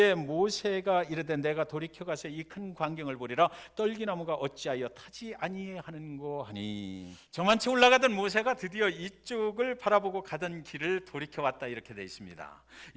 모세가 이르되 내가 돌이켜가서 이 큰 광경을 보리라 떨기나무가 어찌하여 타지 아니하는고 하니. 저만치 올라가던 모세가 드디어 이쪽을 바라보고 가던 길을 돌이켜왔다 이렇게 되어 있습니다.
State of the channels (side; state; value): both; identical; correlation 1.00